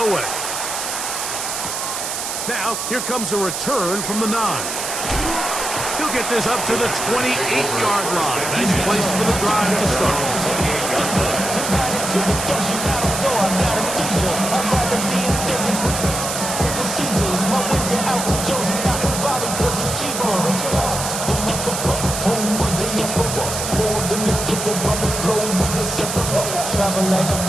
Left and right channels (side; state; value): right; noise; hiss, 4 dB below the sound